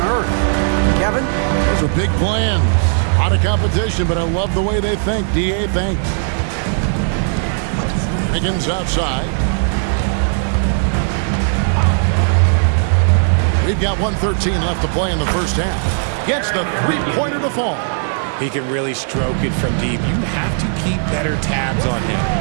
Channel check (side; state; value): left; silent; digital silence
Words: earth. Kevin? Those are big plans. A lot of competition, but I love the way they think. DA thanks. Wiggins outside. We've got 1:13 left to play in the first half. Gets the three-pointer to fall. He can really stroke it from deep. You have to keep better tabs on him.